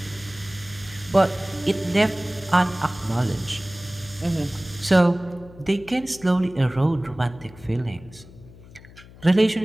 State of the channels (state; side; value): noise; left; hum, 20 dB below the sound